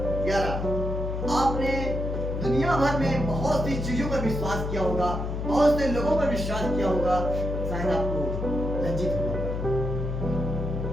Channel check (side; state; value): left; noise; hum, 3 dB below the sound